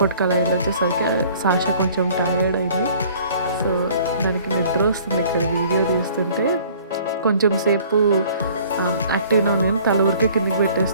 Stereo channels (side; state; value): both; inverted; correlation -0.53